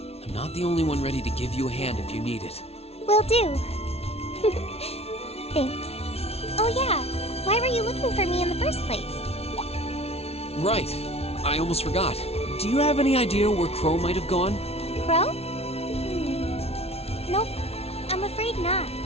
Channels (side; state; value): right; late; 0.30 ms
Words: I'm not the only one ready to give you a hand if you need it. Will do. Thanks. Oh yeah, why were you looking for me in the first place? Right. I almost forgot. Do you have any idea where Crow might have gone? Crow? Nope, I'm afraid not.